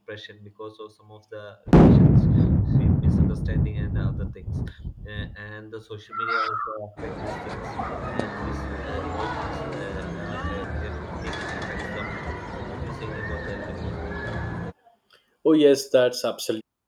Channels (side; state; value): both; identical; correlation 1.00